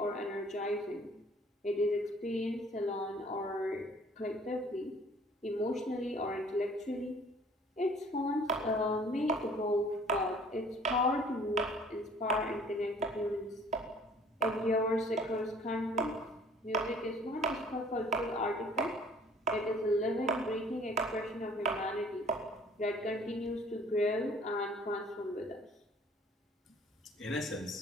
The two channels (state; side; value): normal; both; correlation 0.54